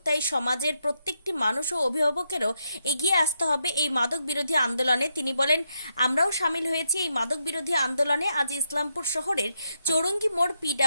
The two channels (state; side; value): inverted; both; correlation -0.82